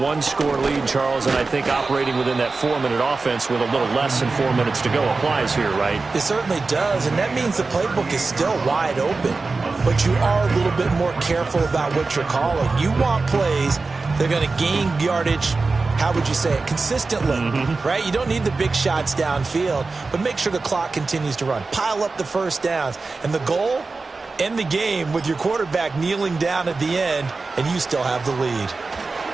lead, Charles, and I think operating within that 4-minute offense with a little less than 4 minutes to go applies here, right? It certainly does, and that means the playbook is still wide open. But you are a little bit more careful about what you're calling. You want plays that are going to gain yardage, how would you say it, consistently, right? You don't need the big shots downfield, but make sure the clock continues to run. Pile up the first downs, and the goal, end the game with your quarterback kneeling down at the end, and you still have the lead.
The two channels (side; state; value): left; quieter; 3.9 dB